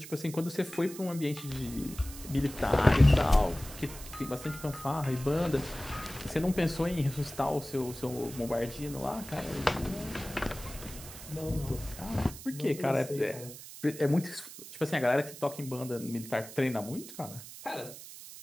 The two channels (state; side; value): noise; right; hiss, 14 dB below the sound